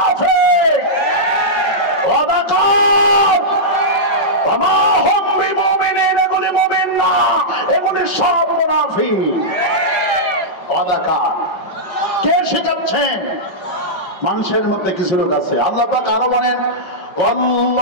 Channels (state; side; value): late; right; 5.4 ms